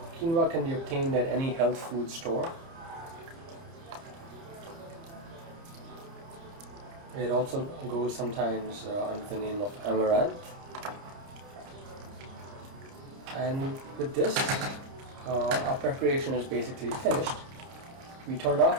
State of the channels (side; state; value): left; late; 30 ms